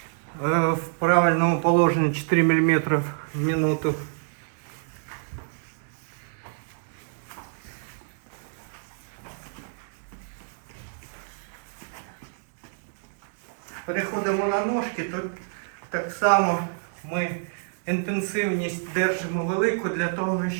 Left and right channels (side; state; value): left; silent; digital silence